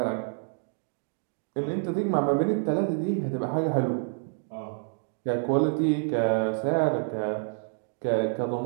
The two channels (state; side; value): silent; left; digital silence